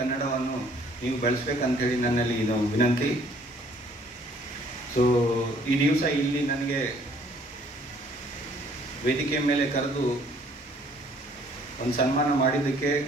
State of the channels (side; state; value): both; normal; correlation 0.60